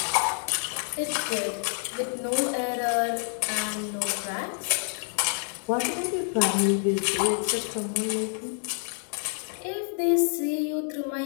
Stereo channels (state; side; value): silent; right; 60 dB below the other